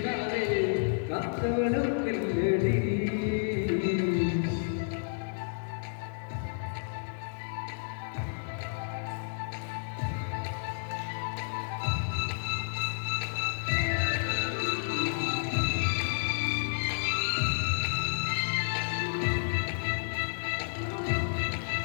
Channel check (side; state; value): right; silent; 57 dB below the other